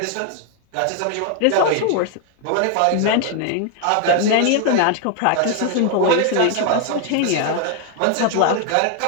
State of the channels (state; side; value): different; both; correlation 0.00